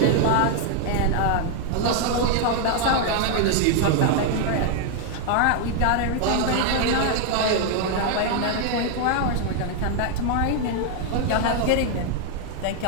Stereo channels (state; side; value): different; both; correlation 0.00